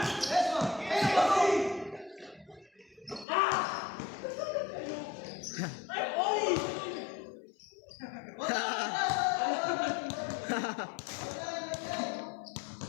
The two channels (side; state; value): right; drops out; at 3.2 s